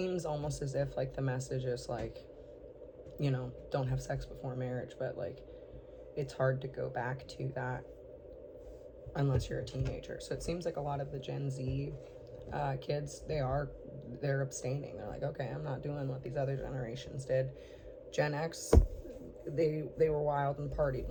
almost as if like the message is like, don't have sex before marriage, but like it's hard to go back to that unless you're a teenager. So it seems like a lot of the Gen Z kids, they're abstaining. They're like, okay, I'm not doing what these other generations did. Gen X, they were wild and partied.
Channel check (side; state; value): both; identical; correlation 1.00